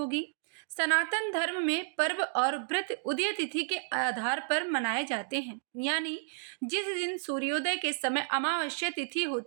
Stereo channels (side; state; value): left; silent; digital silence